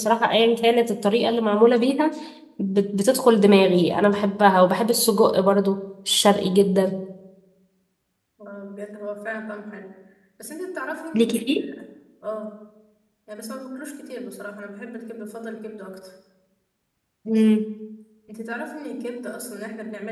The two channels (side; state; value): both; identical; correlation 1.00